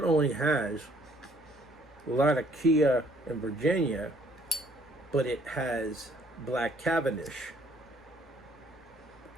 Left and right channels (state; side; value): normal; both; correlation 0.62